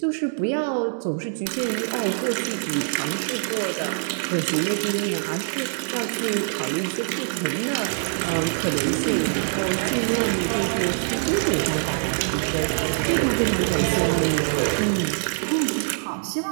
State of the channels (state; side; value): silent; left; digital silence